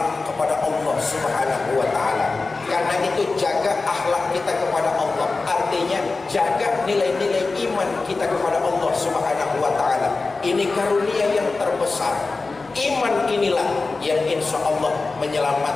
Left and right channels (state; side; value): quieter; right; 3.8 dB